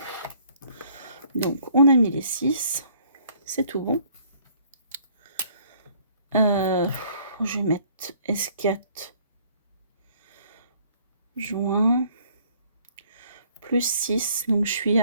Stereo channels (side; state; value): both; inverted; correlation -0.60